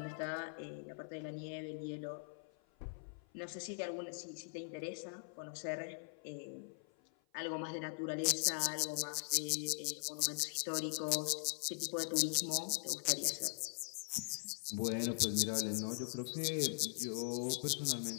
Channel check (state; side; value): silent; right; 50 dB below the other